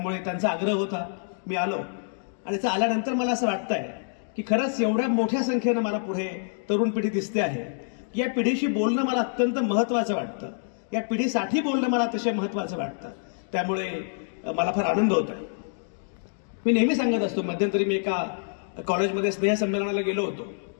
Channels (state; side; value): silent; right; digital silence